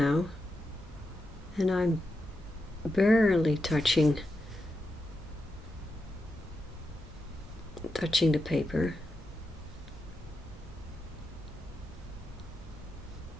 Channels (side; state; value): both; normal; correlation 0.87